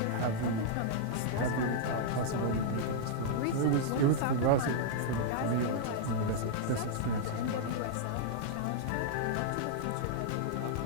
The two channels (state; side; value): different; both; correlation -0.02